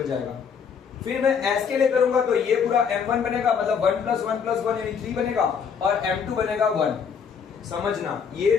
जाएगा। फिर मैं s के लिए करूंगा तो ये पूरा m1 बनेगा, मतलब 1 + 1 + 1 यानी 3 बनेगा और m2 बनेगा 1। समझना, ये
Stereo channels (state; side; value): quieter; right; 6.7 dB